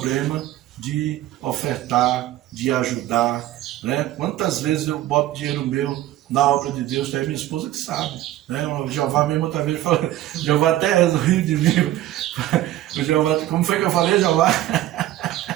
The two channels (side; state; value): left; quieter; 14.4 dB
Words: de ofertar, de ajudar, né? Quantas vezes eu boto dinheiro meu na obra de Deus, tem minha esposa que sabe, né? O Jeová mesmo outra vez falou, o Jeová até riu de mim. O Jeová, como foi que eu falei, Jeová?